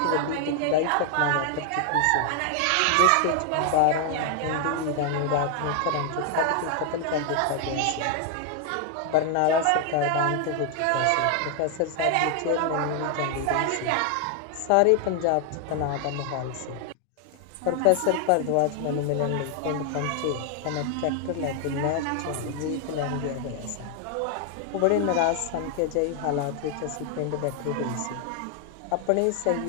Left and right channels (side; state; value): both; different; correlation 0.00